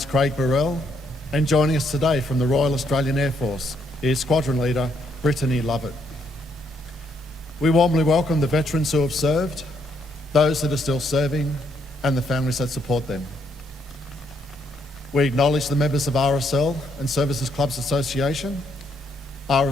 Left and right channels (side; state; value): both; normal; correlation 0.73